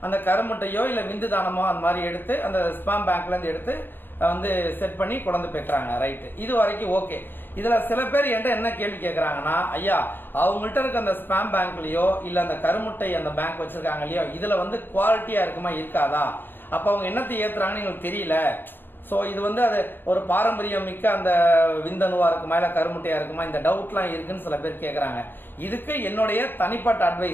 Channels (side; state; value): right; late; 0.098 ms